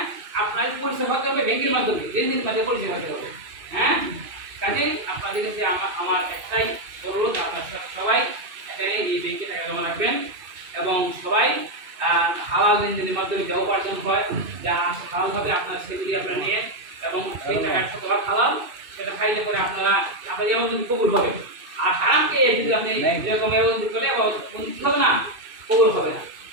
আপনার পরিচয় হতে হবে ব্যাংকের মাধ্যমে, লেনদেনের মাধ্যমে পরিচয় হতে হবে। হ্যাঁ, কাজেই আপনাদের কাছে আমার একটাই অনুরোধ, আপনার সবাই এখানে এই ব্যাংকে টাকা জমা রাখবেন এবং সবাই হালাল লেনদেনের মাধ্যমে যা উপার্জন হয়, যা হালালভাবে আপনার সেগুলি আপনারা নিয়ে এবং সেই টাকার শতভাগ হালাল সেটা খাইলে পরে আপনারা যেমন যদি কবুল হবে। আর হারামকে যদি আপনি এরকম ব্যবস্থা করলে বঞ্চিত হবে না, কবুল হবে না।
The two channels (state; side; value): late; left; 2.6 ms